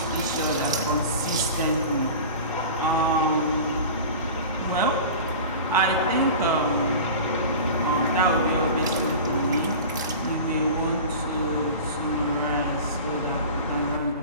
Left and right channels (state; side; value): inverted; both; correlation -0.35